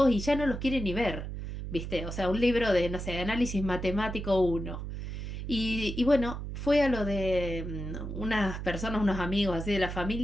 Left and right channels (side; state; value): right; noise; hum, 6 dB below the sound